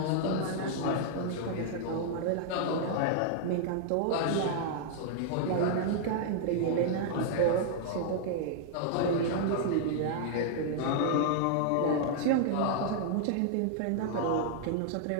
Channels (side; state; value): both; different; correlation -0.01